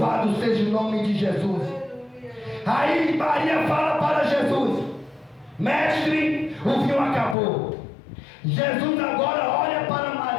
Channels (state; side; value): drops out; right; at 7.4 s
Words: seja o nome de Jesus. Aí Maria fala para Jesus: mestre, o vinho acabou. Jesus agora olha para